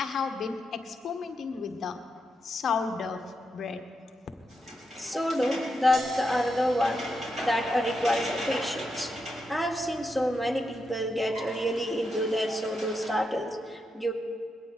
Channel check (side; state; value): both; normal; correlation 0.84